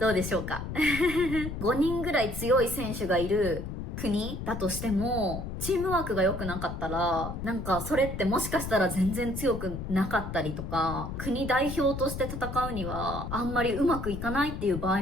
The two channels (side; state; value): left; noise; rumble, 6 dB below the sound